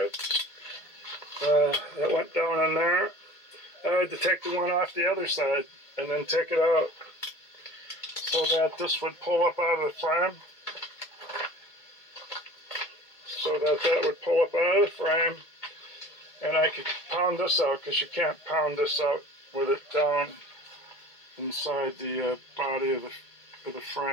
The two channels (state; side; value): late; right; 1.8 ms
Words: that went down in there. I had to take the one off the other side and then take it out so that this would pull up out of the frame. So that would pull up out of the frame, and I could pound this out, because you can't pound this out with it down inside the body of the